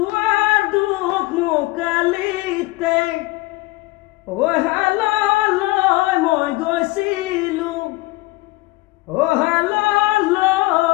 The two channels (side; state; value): right; quieter; 20.5 dB